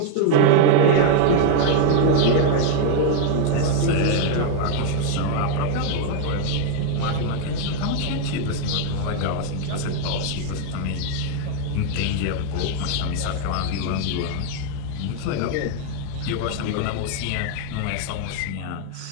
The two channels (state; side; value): different; both; correlation 0.00